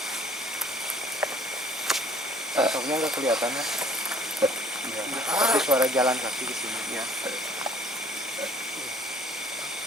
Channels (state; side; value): normal; both; correlation 0.56